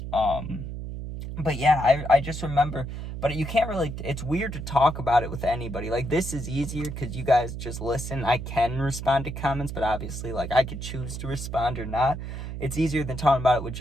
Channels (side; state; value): right; noise; hum, 7 dB below the sound